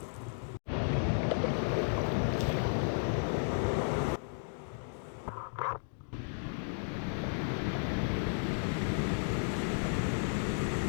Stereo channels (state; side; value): silent; right; digital silence